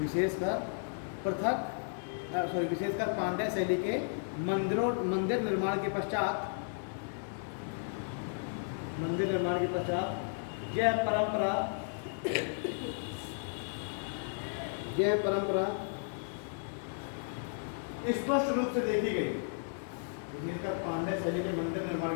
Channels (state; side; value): silent; right; digital silence